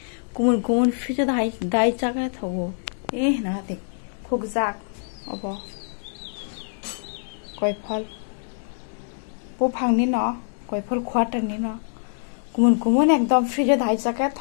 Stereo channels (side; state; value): right; silent; digital silence